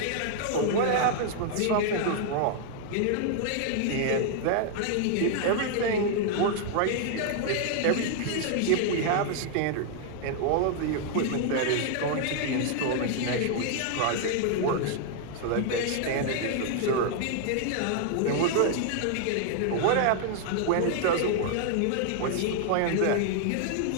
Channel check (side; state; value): both; different; correlation 0.00